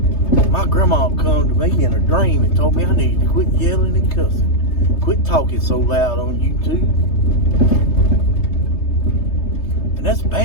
My grandma come to me in a dream and told me I needed to quit yelling and cussing. Quit talking so loud on YouTube. And that's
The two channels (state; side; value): late; right; 3.3 ms